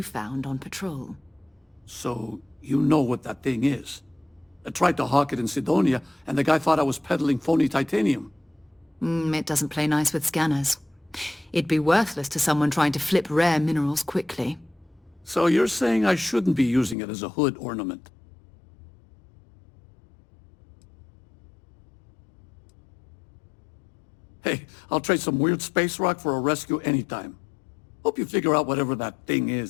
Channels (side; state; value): right; drops out; at 16.9 s